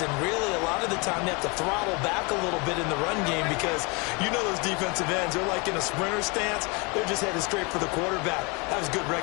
And really, a lot of the time, they have to throttle back a little bit in the run game because you know those defensive ends, they're like in a sprinter stance. They're just headed straight for the quarterback. That was good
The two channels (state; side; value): quieter; right; 29.9 dB